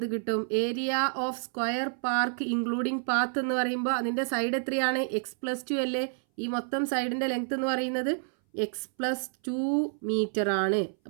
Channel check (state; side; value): silent; left; 59 dB below the other